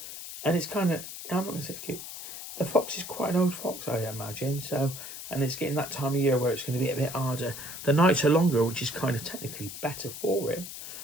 And it's kind of, I'm not going to say it's cute. The fox is quite an old fox, I imagine. So, and it's getting that time of year where it's going to be a bit harder. The nights are longer, which is kind of technically better for him.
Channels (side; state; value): left; noise; hiss, 10 dB below the sound